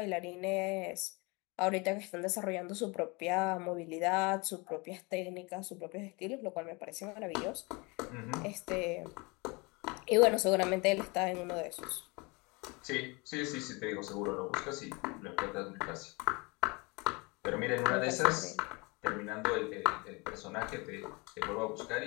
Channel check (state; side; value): quieter; right; 27.5 dB